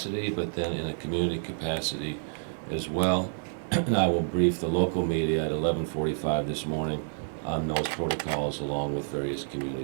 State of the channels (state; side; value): silent; left; 59 dB below the other